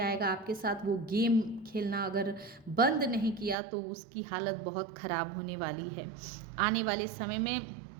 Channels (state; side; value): drops out; left; at 3.6 s